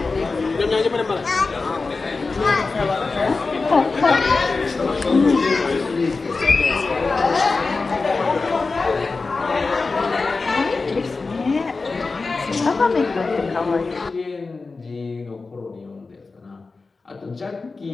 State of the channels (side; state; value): right; quieter; 4.0 dB